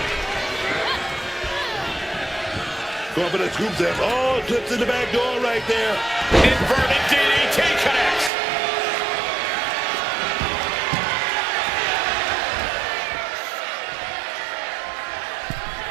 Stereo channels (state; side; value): drops out; left; at 8.3 s